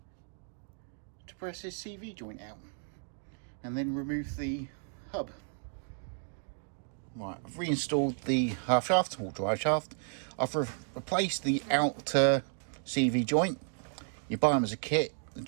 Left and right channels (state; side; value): silent; left; 56 dB below the other